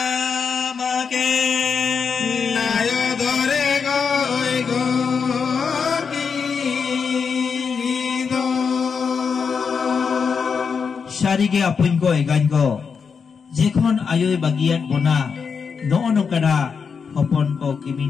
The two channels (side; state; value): right; quieter; 5.9 dB